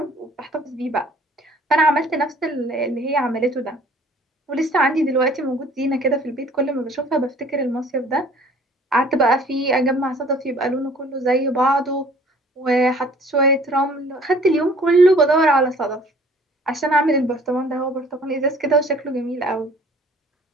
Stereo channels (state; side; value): normal; both; correlation 0.53